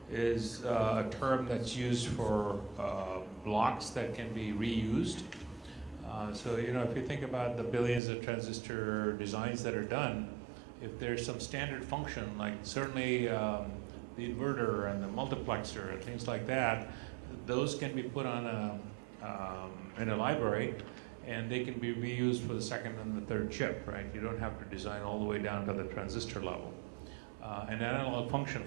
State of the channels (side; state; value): left; drops out; at 8.0 s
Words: is a term that's used for blocks that can be reused. So, you know, if you think about the billions of transistor designs that are done, if there's some standard function, like certainly the inverter and the multiplexer and things like that, those can be put on in a library, and they can be reused for the second and the third chip, right? You don't have to design all the way down to the transistor level. An analog function,